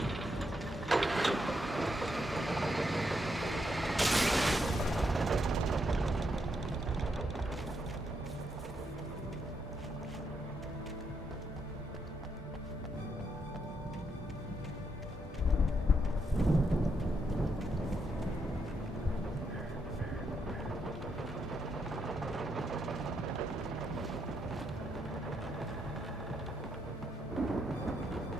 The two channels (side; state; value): both; normal; correlation 0.79